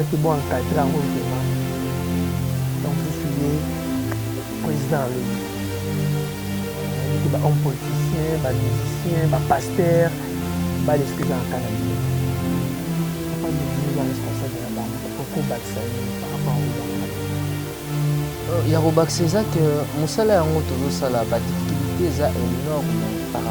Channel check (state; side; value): identical; both; correlation 1.00